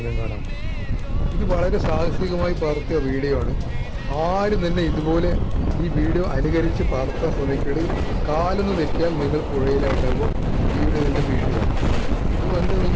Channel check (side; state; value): both; identical; correlation 1.00